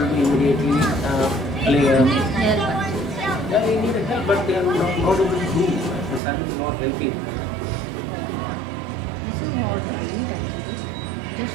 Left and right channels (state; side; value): drops out; left; at 6.2 s